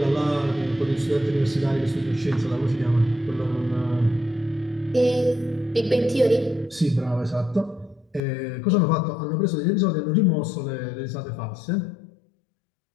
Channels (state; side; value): drops out; right; at 8.2 s